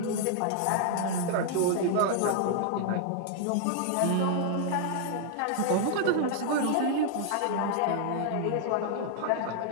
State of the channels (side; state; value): both; different; correlation -0.01